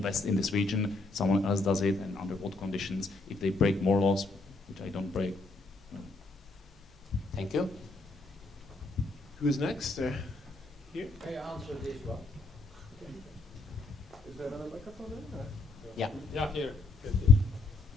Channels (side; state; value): right; quieter; 3.5 dB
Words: in this region, someone else does it, and under what conditions, if they break more laws, which I don't break. Thank you. Who's next? Here? Can you answer this one? Is there another microphone there? Yeah. Yeah, here.